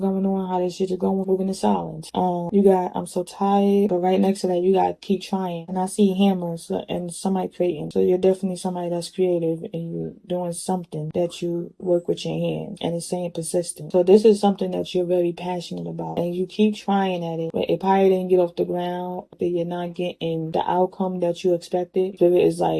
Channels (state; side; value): identical; both; correlation 1.00